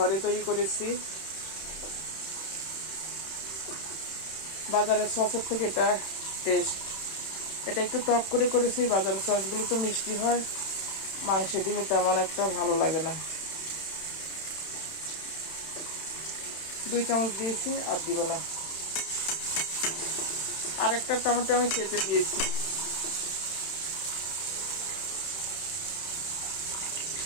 তৈরি করেছি। বাজারের সসের থেকে এটা টেস্ট, এটা একটু টক করে করেছি। বাজারের সসগুলো তো মিষ্টি হয়, মাংসে দিলে তেমন একটা ভালো লাগে না। 2 চামচ দিয়েছি, আর দিব না। আরেকটা টমেটো আমি কেটে দিয়েছি।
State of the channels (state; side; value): late; right; 31 ms